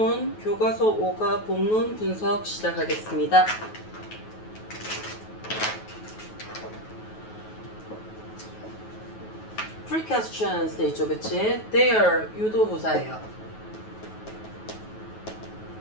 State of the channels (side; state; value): right; late; 9.3 ms